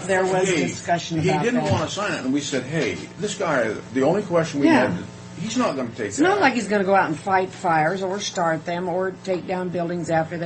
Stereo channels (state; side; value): identical; both; correlation 1.00